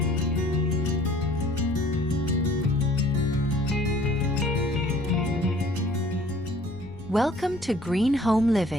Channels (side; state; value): left; noise; rumble, 18 dB below the sound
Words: Welcome to Green Home